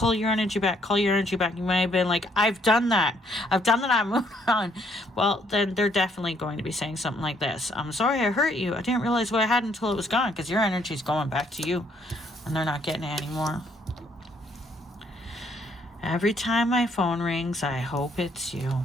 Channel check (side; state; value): both; normal; correlation 0.68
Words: your energy back, call your energy back. You might have been like, I've done that, I'm moving on. Well, then they're definitely going to be saying something like this. I'm sorry I hurt you. I didn't realize what I had until it was gone, because your energy's going back to you, and they're not getting it anymore. Every time my phone rings, I hope it's